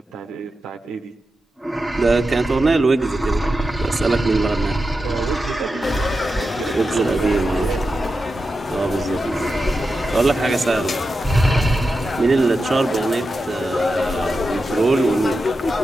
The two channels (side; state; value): both; normal; correlation 0.90